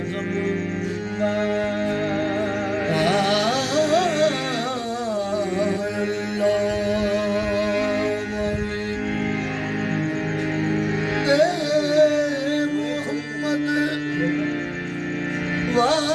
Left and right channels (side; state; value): both; identical; correlation 1.00